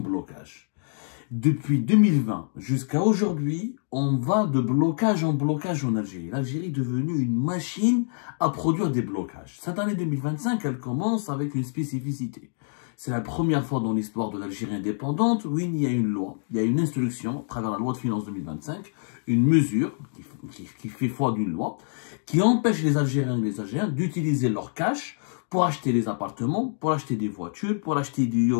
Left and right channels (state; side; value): silent; right; digital silence